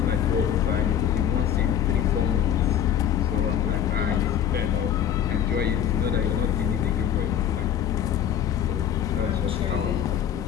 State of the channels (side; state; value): right; quieter; 9.6 dB